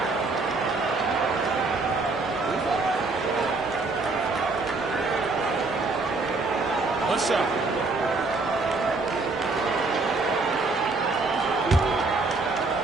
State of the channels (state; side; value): quieter; left; 3.6 dB